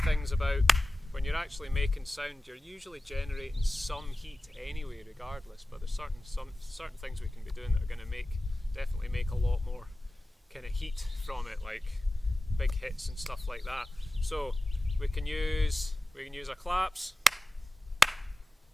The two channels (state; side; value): normal; both; correlation 0.96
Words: things about when you're actually making sound, you're usually generating some heat anyway, regardless. But there's certain things we can be doing that are going to definitely make a lot more kind of heat from it, like big hits and stuff like that. So we can use our claps.